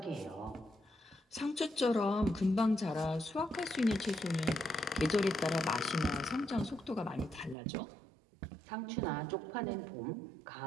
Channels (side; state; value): left; drops out; at 7.6 s